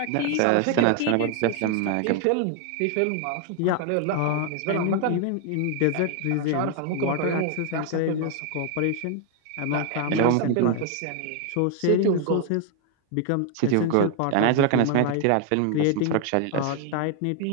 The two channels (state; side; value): different; both; correlation 0.01